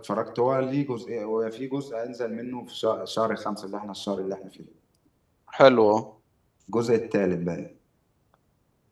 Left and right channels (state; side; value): identical; both; correlation 1.00